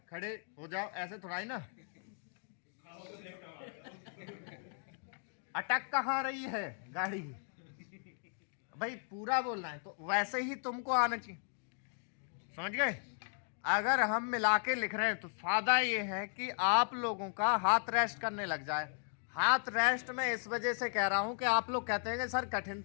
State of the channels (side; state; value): right; silent; 54 dB below the other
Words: खड़े हो जाओ, ऐसे थोड़ा ही ना। अटक कहाँ रही है गाड़ी, भाई पूरा बोलना है, तो वैसे ही तुमको आना चाहिए। समझ गए? अगर हम मिला के लिख रहे हैं तो फायदा ये है कि आप लोगों का हाथ रेस्ट करने लग जाए। हाथ रेस्ट में इस वजह से कह रहा हूं कि आप लोग कहते हैं कि सर कठिन